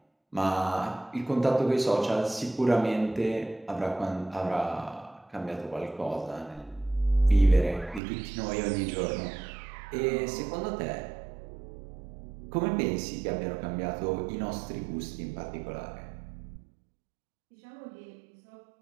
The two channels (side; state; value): left; drops out; at 8.0 s